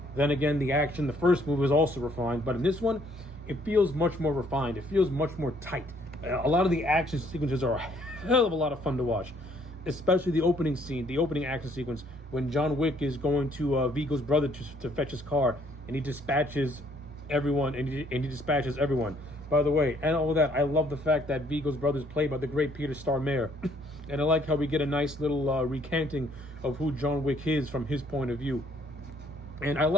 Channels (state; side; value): normal; both; correlation 0.65